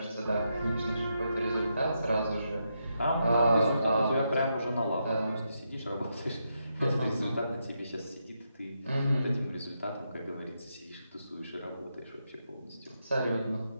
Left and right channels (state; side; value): inverted; both; correlation -0.82